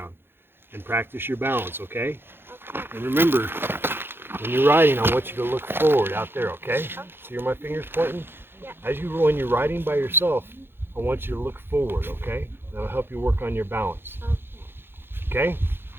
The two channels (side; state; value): left; late; 0.10 ms